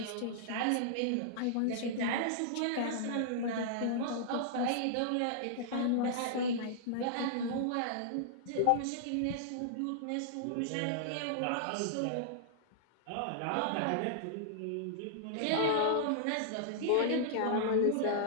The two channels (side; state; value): both; different; correlation -0.02